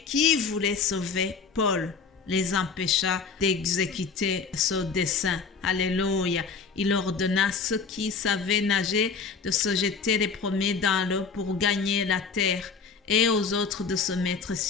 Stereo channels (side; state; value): right; quieter; 5.2 dB